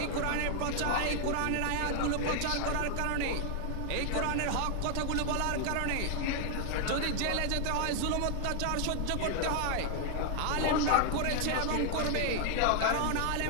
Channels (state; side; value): different; both; correlation 0.00